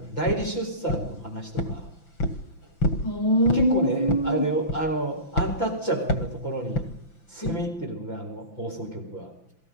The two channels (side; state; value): right; late; 5.9 ms